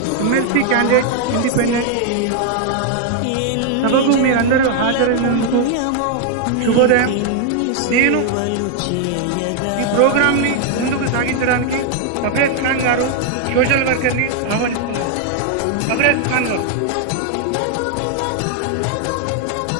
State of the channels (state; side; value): different; both; correlation 0.00